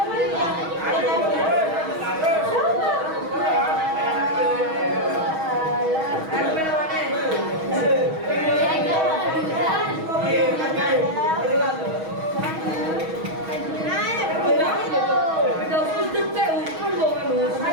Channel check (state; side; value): late; left; 6.3 ms